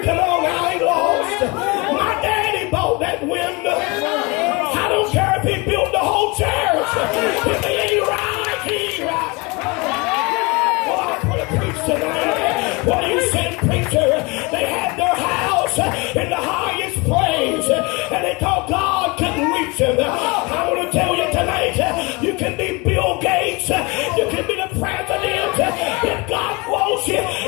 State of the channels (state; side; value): quieter; right; 26.9 dB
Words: on, I ain't lost. My daddy bought that window. I don't care if he built the whole church. If he ain't right, he ain't right. Well, I put a preach tonight. What are you saying, preacher?